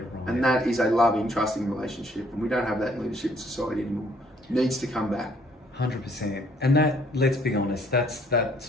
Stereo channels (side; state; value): both; normal; correlation 0.64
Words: And that is a loving, trusting relationship. And we don't have that in leadership in society anymore. It needs to come back. 100%. And that, let's be honest,